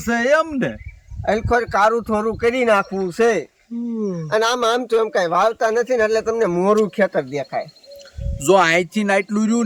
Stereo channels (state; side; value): identical; both; correlation 1.00